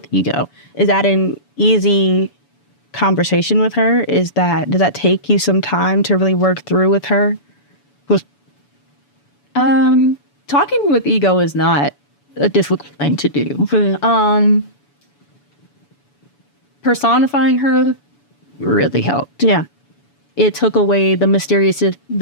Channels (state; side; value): late; right; 7.0 ms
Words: ego, is that an easy conversation with her? Does that take you some time to really work through with her? Talking with ego is not a difficult thing to do. Personifying her really helped. Yeah. It took away the